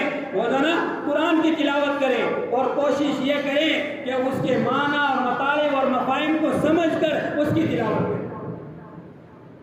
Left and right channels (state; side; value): identical; both; correlation 1.00